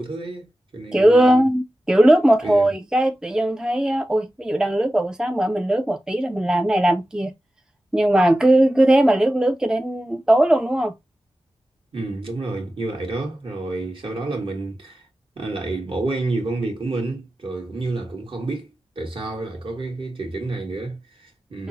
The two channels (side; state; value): both; normal; correlation 0.94